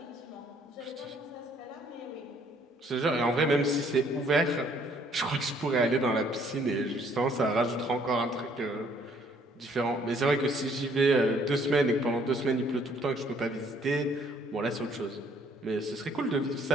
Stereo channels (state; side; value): normal; both; correlation 0.63